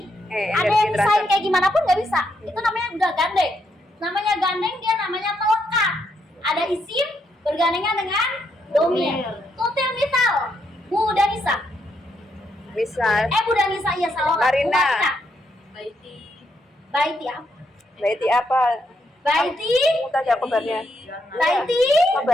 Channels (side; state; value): both; normal; correlation 0.78